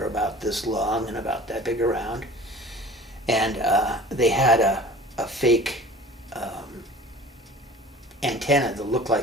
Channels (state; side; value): normal; both; correlation 0.43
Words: about this long and about that big around, and they had a fake antenna that looked